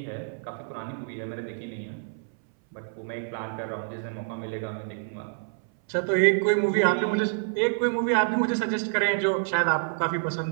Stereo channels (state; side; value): silent; left; 59 dB below the other